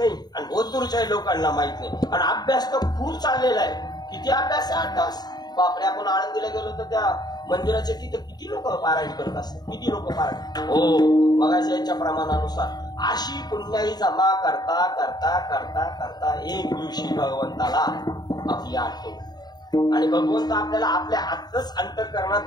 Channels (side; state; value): right; late; 0.20 ms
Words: आणि ओतूरच्या लोकांना माहित नाही. आणि अभ्यास तर खूप चाललेला आहे. किती अभ्यास आहे? 8 तास. बापरे, आपण आळंदीला गेलो तर त्या मंदिराचे तिथे किती लोक पारायण करत असतात, किती लोक पारायण. हो, मगाच्या याच्या प्रमाणानुसार अशी पुण्याई जमा करता करता करता करता एक दिवशी भगवंताला आपली आठवण. आणि भगवंत आपल्याला आपल्या आतच अंतःकरणात